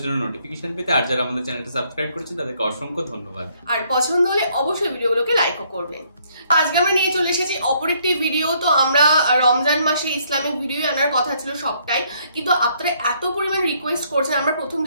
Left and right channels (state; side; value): inverted; both; correlation -0.68